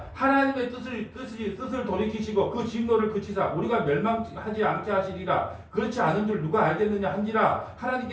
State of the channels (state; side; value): identical; both; correlation 1.00